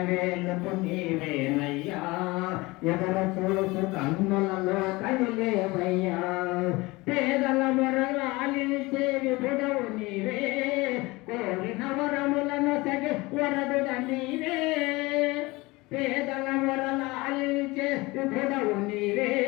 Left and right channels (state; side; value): quieter; right; 22.5 dB